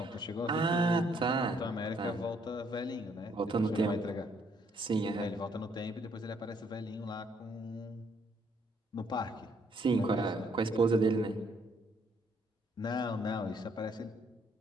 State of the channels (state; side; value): normal; both; correlation 0.68